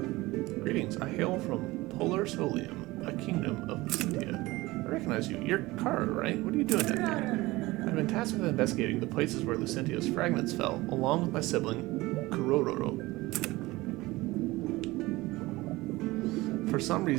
Greetings. I hail from Polar Solium, a kingdom of Lucentia. I recognize you. You're Kara, right? What are you doing down here? I've been tasked with investigating the places where Lucentia's fragments fell, along with my sibling, Kurororo. For some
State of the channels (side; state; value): left; quieter; 20.1 dB